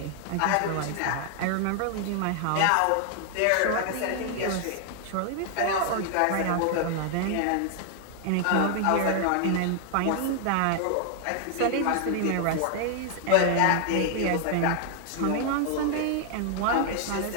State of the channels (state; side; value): different; both; correlation 0.00